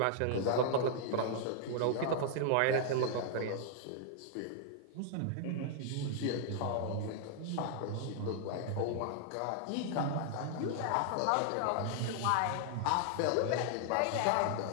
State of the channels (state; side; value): different; both; correlation -0.01